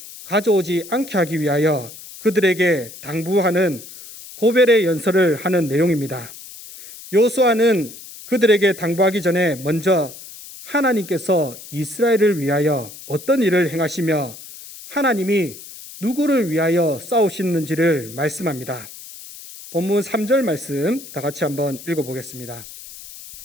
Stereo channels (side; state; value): left; noise; hiss, 16 dB below the sound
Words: 가져오지 않게 하기 위하여 그들에게 당부하는 고별의 연설을 하는 내용입니다. 여호수아는 그들에게 당부하기 전에 먼저 하나님께서 이스라엘을 위하여 어떤 일을 행하시며 하나님이 누구를 위하여 싸우시는지를 말씀합니다. 본문 3절 말씀 다 같이 한번 읽어보겠습니다.